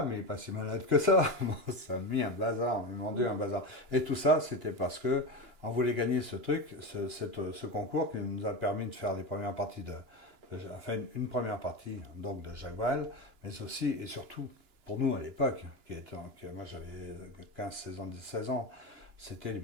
mais il n'est pas si malade que ça. Bon, ça a mis un bazar, ils m'ont dit un bazar. Et tout ça, c'était parce que on voulait gagner ce truc, ce concours qui nous a permis de faire les premières parties enfin une première partie donc de Jacques Brel, mais aussi et surtout pour nous à l'époque, moi j'avais 15, 16 ans, 16 ans, c'était les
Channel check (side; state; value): left; late; 2.9 ms